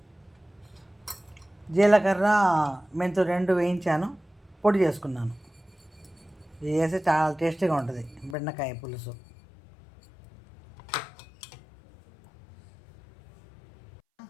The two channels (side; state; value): right; drops out; at 8.3 s